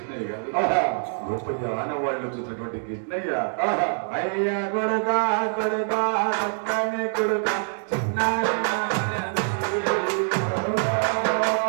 గారు గొప్ప ఆనవాళ్ళు చూసినటువంటి కృష్ణయ్య అయ్యా కొడుగా కొడుగా పక్కనే కొడుగా చిన్నారి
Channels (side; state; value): left; silent; digital silence